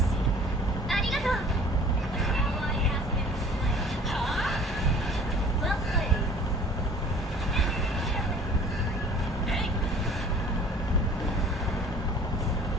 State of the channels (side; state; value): both; normal; correlation 0.48